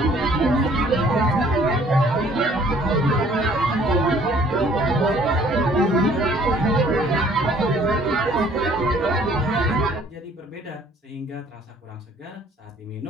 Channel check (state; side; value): normal; both; correlation 0.58